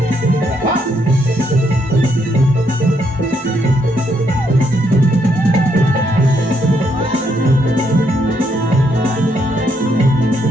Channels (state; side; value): normal; both; correlation 0.75